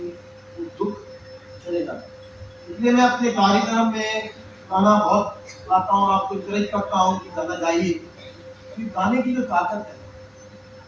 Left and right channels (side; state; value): both; identical; correlation 1.00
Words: वो दुख चले जाता है। इसलिए मैं अपने कार्यक्रम में गाना बहुत गाता हूँ और आपको इंकरेज करता हूँ कि गाना गाइए। क्योंकि गाने की जो ताकत है,